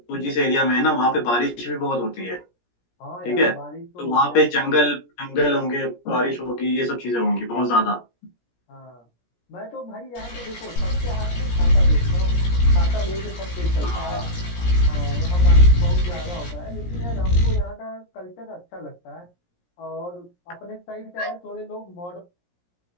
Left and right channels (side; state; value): right; late; 17 ms